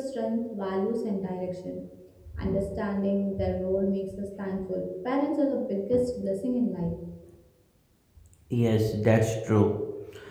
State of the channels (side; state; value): both; identical; correlation 1.00